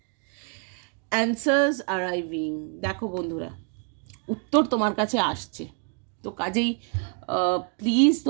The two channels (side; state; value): left; quieter; 38.5 dB